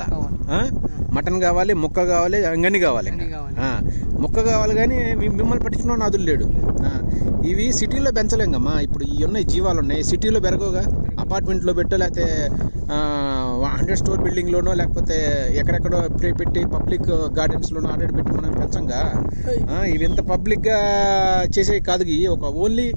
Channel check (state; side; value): inverted; both; correlation -1.00